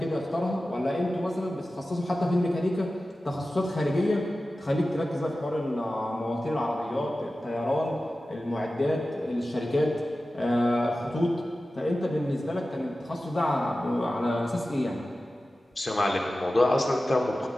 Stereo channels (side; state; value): both; normal; correlation 0.95